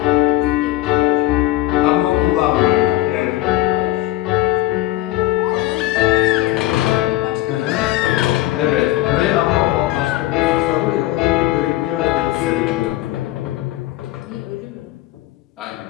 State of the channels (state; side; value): quieter; right; 16.2 dB